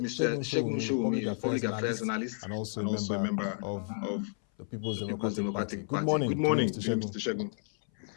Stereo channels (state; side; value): silent; right; 57 dB below the other